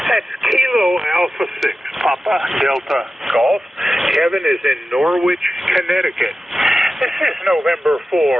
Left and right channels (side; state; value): both; normal; correlation 0.93